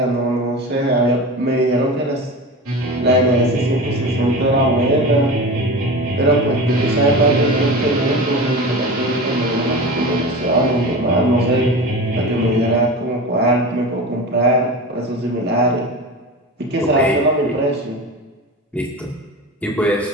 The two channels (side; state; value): both; normal; correlation 0.29